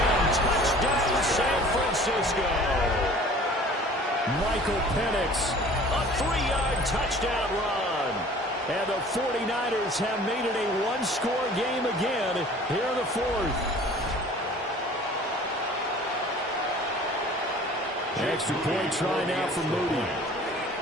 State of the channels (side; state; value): both; normal; correlation 0.48